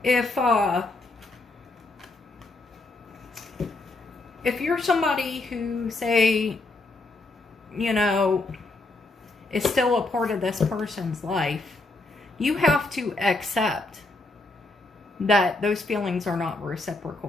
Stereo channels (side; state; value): right; quieter; 3.1 dB